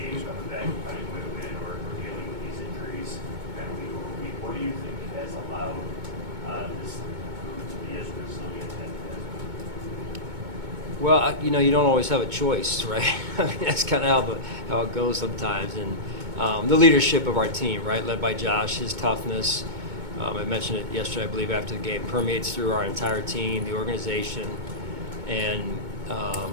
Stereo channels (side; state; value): left; late; 2.2 ms